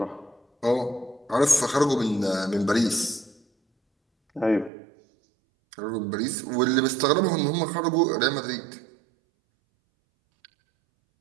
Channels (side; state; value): left; drops out; at 4.7 s